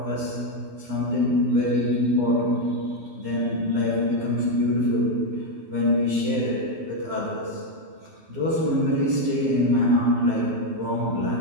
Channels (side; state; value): left; late; 12 ms